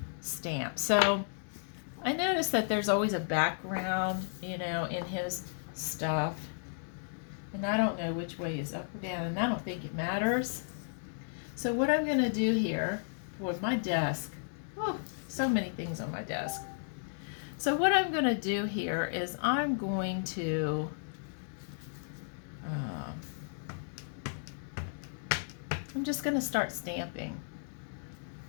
stamp. So I noticed that there's always a background, you know, in his stuff. And I don't know which way is up or down, and I don't think it matters. So what I'm going to do here with my desk, oh, so many things on my desk. So what I'm going to do here is I'm going to I'm just going to start stamping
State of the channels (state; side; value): silent; right; digital silence